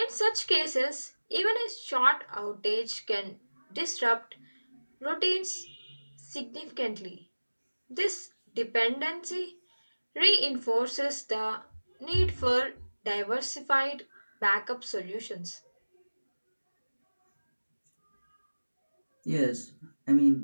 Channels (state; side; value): inverted; both; correlation -1.00